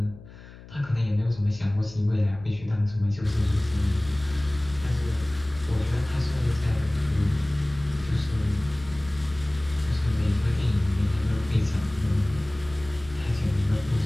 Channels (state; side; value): noise; left; hum, 18 dB below the sound